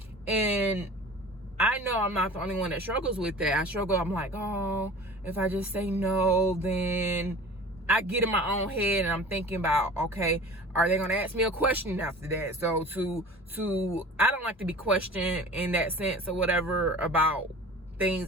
And I know I'm not the only one that struggles with that. I'm like, oh, if I just say no, then I get in my own head and I'm thinking about, okay, are they gonna ask me a question after that? So I don't like to be questioned in that sense or whatever about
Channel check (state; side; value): normal; both; correlation 0.40